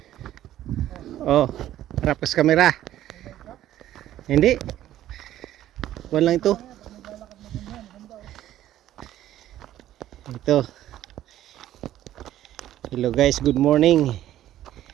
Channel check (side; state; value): left; quieter; 12.9 dB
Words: Oh, harap ka sa kamera. Hindi. Kuwan lang ito. Ito. Hello guys, good morning.